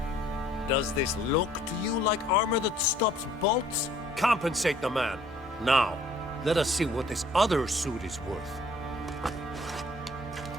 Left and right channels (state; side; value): normal; both; correlation 0.58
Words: Does this look to you like armor that stops bolts? Compensate the man. Now, let us see what this other suit is worth.